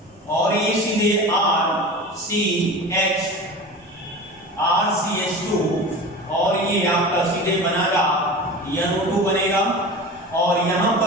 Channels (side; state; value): both; normal; correlation 0.33